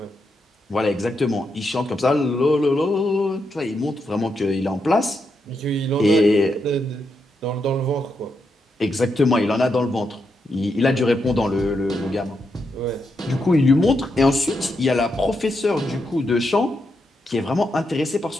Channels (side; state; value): both; normal; correlation 0.83